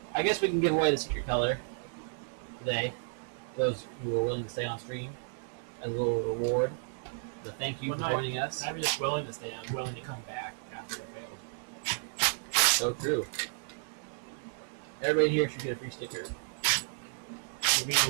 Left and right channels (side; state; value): left; silent; digital silence